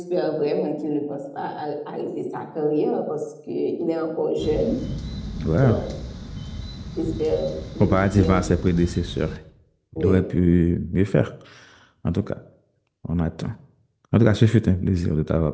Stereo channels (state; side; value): identical; both; correlation 1.00